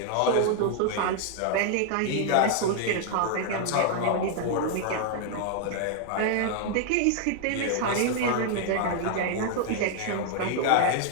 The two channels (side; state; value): both; different; correlation 0.00